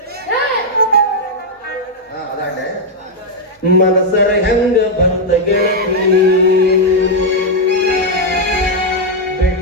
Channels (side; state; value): both; normal; correlation -0.01